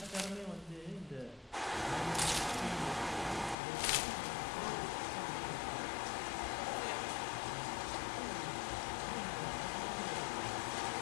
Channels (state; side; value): drops out; right; at 3.6 s